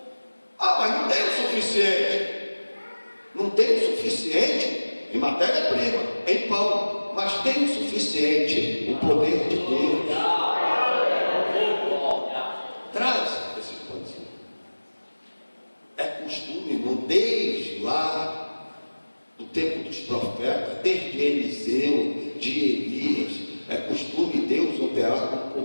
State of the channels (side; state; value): both; inverted; correlation -1.00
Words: Mas não tem o suficiente. Não tem o suficiente em matéria-prima, em pão, mas tem o suficiente, o poder de Deus. Traz esses pãezinhos. É costume, irmão, desde lá do tempo dos profetas, desde Eliseu, de Elias, é costume Deus operar com um